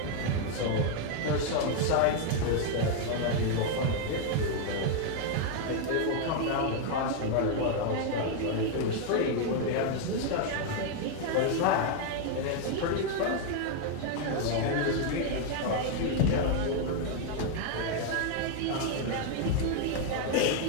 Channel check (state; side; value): different; both; correlation 0.00